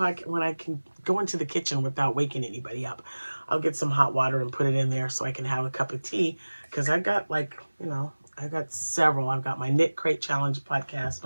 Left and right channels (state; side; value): inverted; both; correlation -1.00